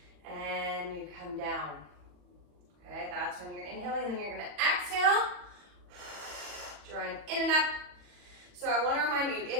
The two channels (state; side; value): late; left; 40 ms